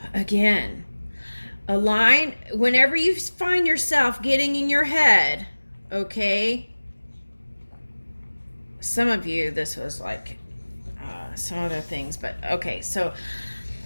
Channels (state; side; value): inverted; both; correlation -1.00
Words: again, align whenever you find yourself getting in your head. Okay, some of you this was like some other things, but okay, so